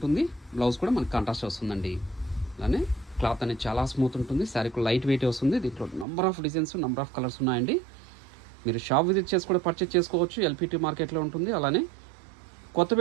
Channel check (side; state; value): left; drops out; at 6.1 s